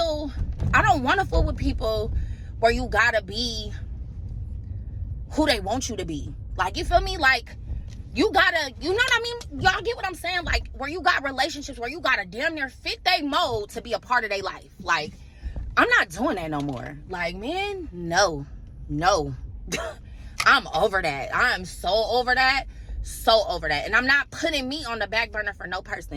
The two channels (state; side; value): identical; both; correlation 1.00